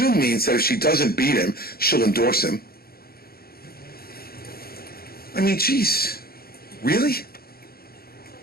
means that if she doesn't beat him, she'll endorse him. I mean, geez, really?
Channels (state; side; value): late; right; 0.44 ms